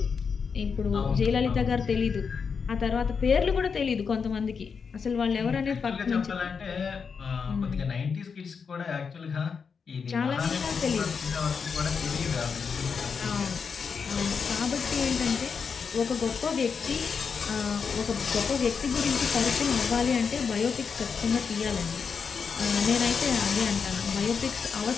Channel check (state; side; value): quieter; right; 5.8 dB